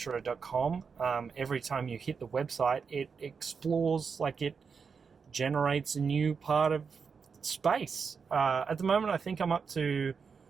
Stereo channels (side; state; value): left; quieter; 5.7 dB